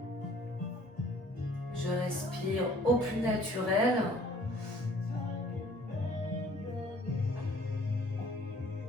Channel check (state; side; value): normal; both; correlation 0.55